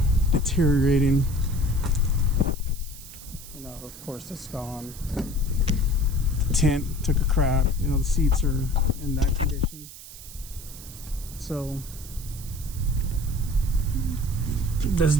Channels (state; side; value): noise; right; hiss, 15 dB below the sound